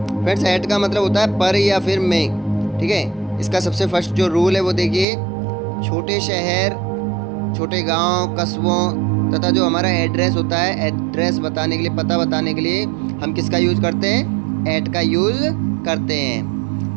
फ्रेंड्स, एट का मतलब होता है पर या फिर में, ठीक है। इसका सबसे फर्स्ट जो रूल है वो देखिए, छोटे शहर, छोटे गांव, कस्बों तथा जो हमारा एड्रेस होता है, एड्रेस बताने के लिए, पता बताने के लिए हम किसका यूज़ करते हैं? एट का यूज़ करते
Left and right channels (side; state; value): left; drops out; at 5.1 s